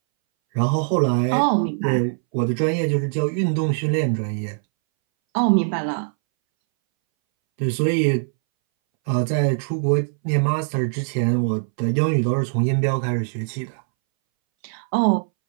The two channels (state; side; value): silent; left; 63 dB below the other